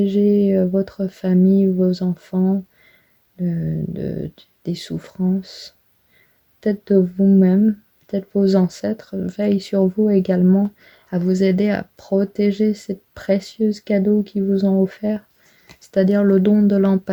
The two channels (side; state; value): both; identical; correlation 1.00